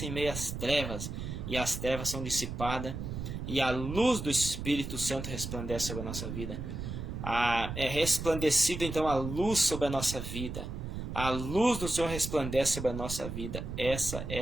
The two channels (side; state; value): right; noise; rumble, 6 dB below the sound